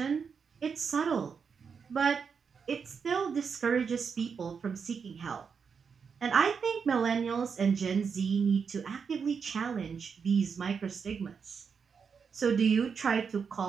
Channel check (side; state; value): left; quieter; 6.1 dB